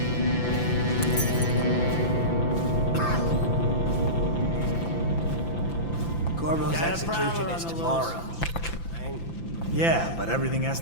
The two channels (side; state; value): right; late; 5.9 ms